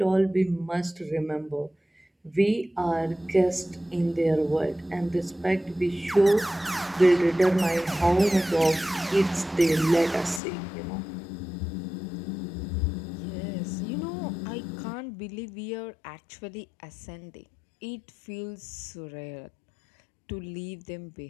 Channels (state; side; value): drops out; right; at 10.4 s